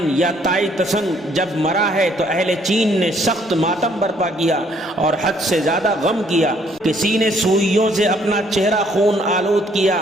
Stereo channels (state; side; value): normal; both; correlation 0.65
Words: یا تائی تسن جب مرا ہے تو اہل چین نے سخت ماتم برپا کیا اور حد سے زیادہ غم کیا۔ کسی نے سوئیوں سے اپنا چہرہ خون آلود کیا،